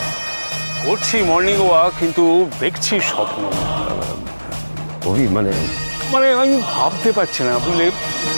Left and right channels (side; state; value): both; inverted; correlation -1.00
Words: করছি মর্নিং ওয়াক, কিন্তু দেখছি স্বপ্ন। মানে মানে আমি ভাবতে পারছি না, বুঝলে,